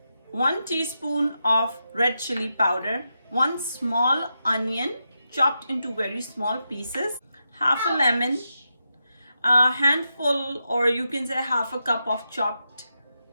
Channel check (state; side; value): inverted; both; correlation -0.87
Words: 1 teaspoon of red chili powder, 1 small onion chopped into very small pieces, half a lemon, a handful, or you can say half a cup of chopped